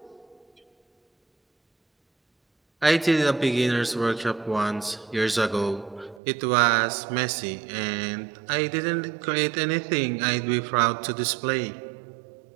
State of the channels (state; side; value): drops out; left; at 6.2 s